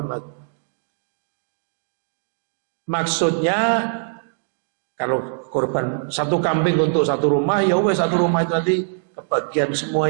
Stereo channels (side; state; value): left; silent; digital silence